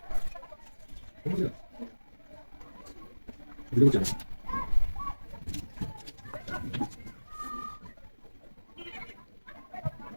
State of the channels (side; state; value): both; inverted; correlation -1.00